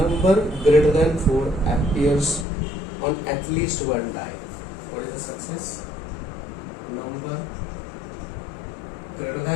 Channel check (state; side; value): drops out; right; at 2.5 s